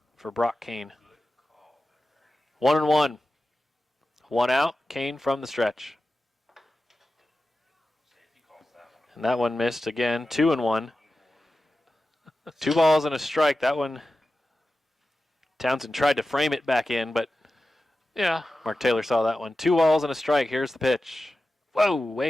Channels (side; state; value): both; normal; correlation 0.94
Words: for Brock Kane. 1-1. 1 out, Kane from the stretch. And that one missed again, 2-1. 2 balls and a strike. That one, Townsend tried to frame it back in, but Yeah. Mark Taylor saw that one. 2 balls and a strike. Here's the pitch. Whoa,